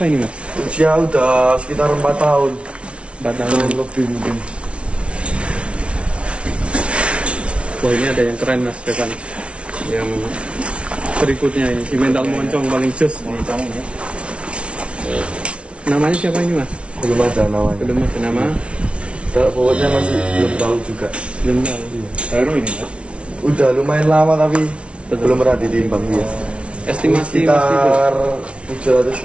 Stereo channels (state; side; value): late; left; 0.060 ms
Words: ini mas? Usia udah sekitar 4 tahun. 4 tahun. Lebih mungkin. Wah ini ada yang keren mas depan. Yang berikutnya ini si mental moncong paling jos. Moncong ya. Namanya siapa ini mas? Belum ada namanya. Belum ada nama. Kalau bobotnya masih belum tahu juga. Belum tahu. Baru ini ya. Udah lumayan lama tapi Betul. belum pernah ditimbang dia. Estimasi mas Tibo. Sekitar